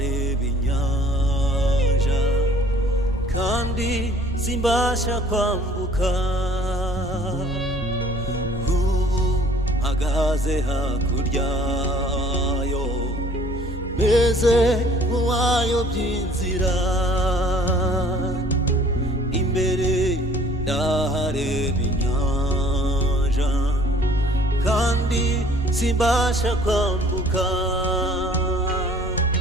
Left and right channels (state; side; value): normal; both; correlation 0.55